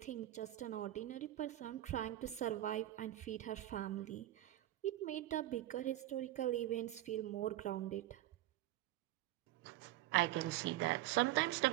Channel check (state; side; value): quieter; left; 14.7 dB